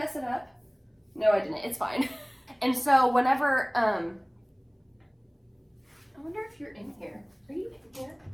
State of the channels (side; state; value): both; identical; correlation 1.00